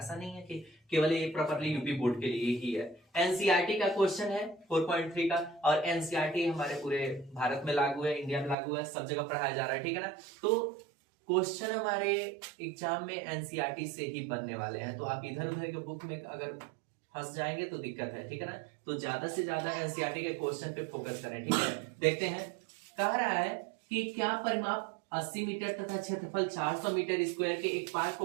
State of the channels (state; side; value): drops out; left; at 8.6 s